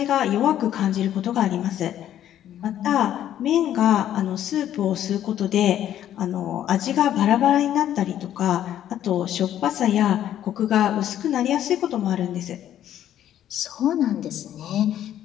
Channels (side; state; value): right; quieter; 11.3 dB